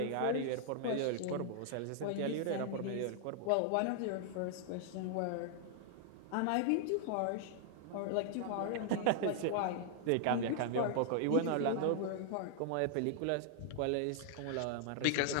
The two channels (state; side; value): different; both; correlation -0.01